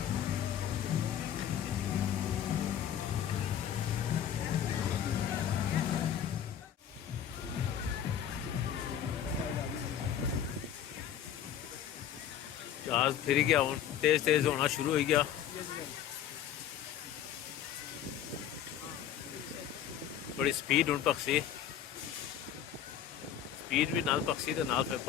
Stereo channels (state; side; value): quieter; right; 9.9 dB